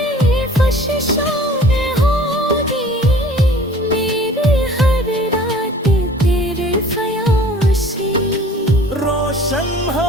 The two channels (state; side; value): normal; both; correlation 0.48